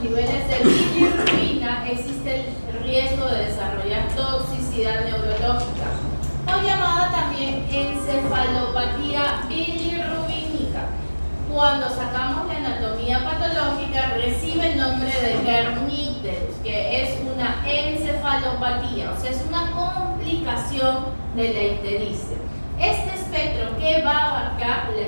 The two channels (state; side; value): inverted; both; correlation -1.00